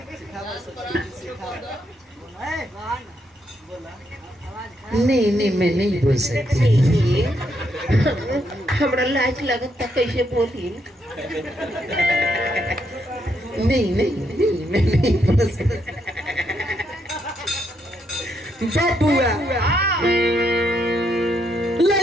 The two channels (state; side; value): normal; both; correlation 0.77